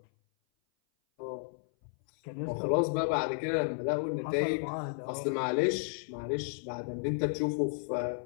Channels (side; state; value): right; silent; 56 dB below the other